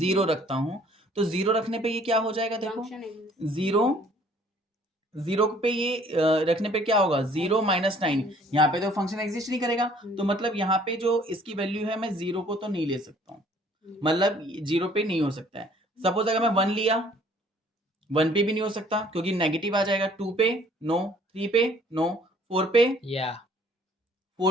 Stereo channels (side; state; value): both; normal; correlation 0.57